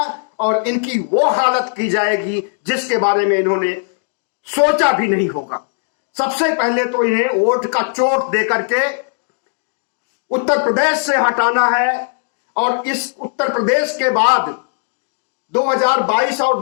और इनकी वो हालत की जाएगी जिसके बारे में इन्होंने सोचा भी नहीं होगा। सबसे पहले तो इन्हें वोट का चोट देकर के उत्तर प्रदेश से हटाना है, और इस उत्तर प्रदेश के बाद 2022 और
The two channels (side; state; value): right; silent; digital silence